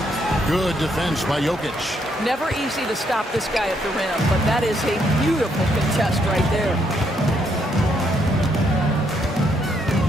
Good defense by Jokic. Never easy to stop this guy at the rim, but that is a beautiful contest right there.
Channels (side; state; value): both; normal; correlation 0.74